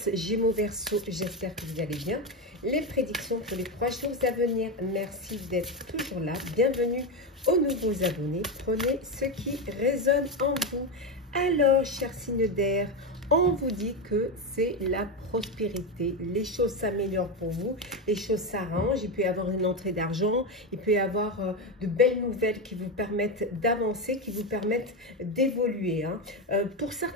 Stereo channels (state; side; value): normal; both; correlation 0.12